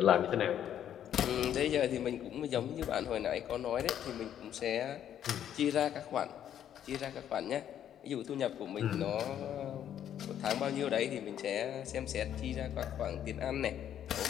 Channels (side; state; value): right; quieter; 10.2 dB